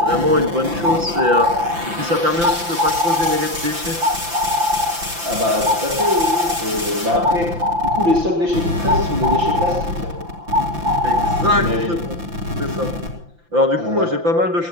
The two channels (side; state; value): left; late; 5.9 ms